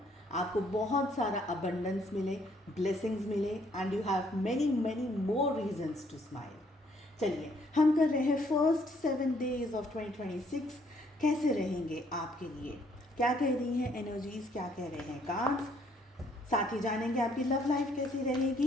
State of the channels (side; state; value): both; normal; correlation 0.67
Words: आपको बहुत सारा अबंडेंस मिले, ब्लेसिंग्स मिले and you have many many more reasons to smile. चलिए हम कर रहे हैं फर्स्ट 7 days ऑफ 2026. कैसे रहेंगे आपके लिए, क्या कह रही हैं एनर्जीज, क्या कह रहे हैं कार्ड्स. साथ ही जानेंगे आपकी लव लाइफ कैसी